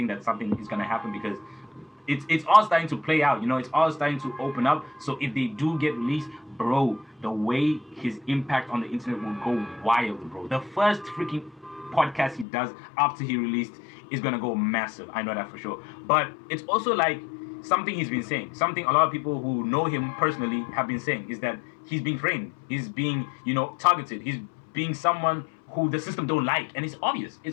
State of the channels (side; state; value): right; drops out; at 12.5 s